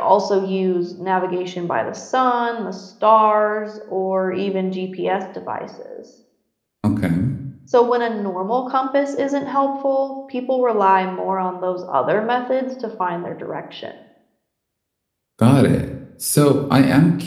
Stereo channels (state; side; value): identical; both; correlation 1.00